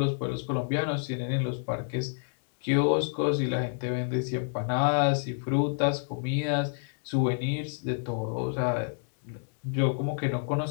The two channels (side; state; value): right; silent; digital silence